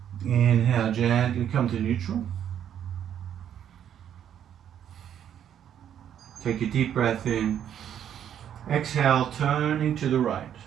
Inhale, gently come to neutral. Take a deep breath in. Exhale, turning to the right.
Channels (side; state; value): left; quieter; 9.6 dB